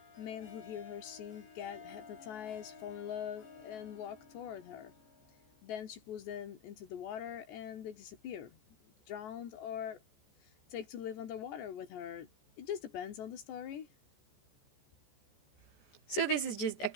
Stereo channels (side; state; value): right; late; 14 ms